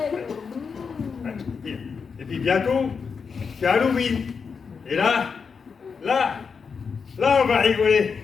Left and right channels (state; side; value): quieter; right; 5.7 dB